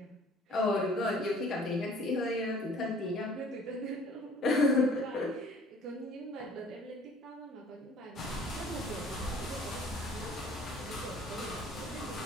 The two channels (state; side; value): normal; both; correlation 0.52